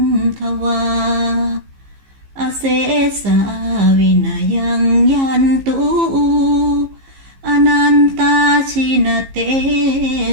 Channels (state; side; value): late; left; 15 ms